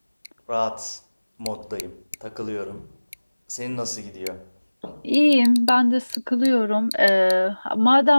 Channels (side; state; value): both; inverted; correlation -1.00